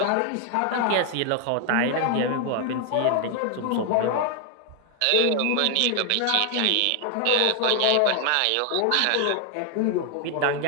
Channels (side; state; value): both; different; correlation 0.01